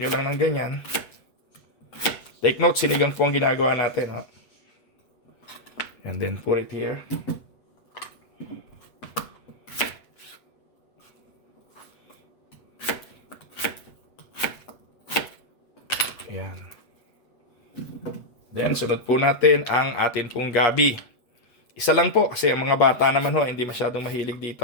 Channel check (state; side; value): late; right; 8.0 ms